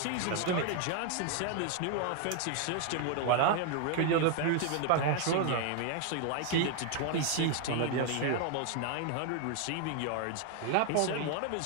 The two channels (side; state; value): both; different; correlation 0.00